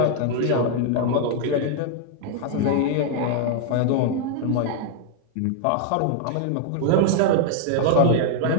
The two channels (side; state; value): both; different; correlation 0.00